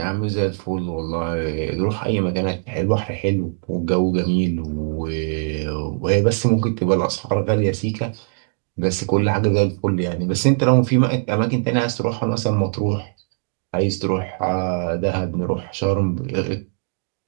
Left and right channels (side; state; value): left; silent; digital silence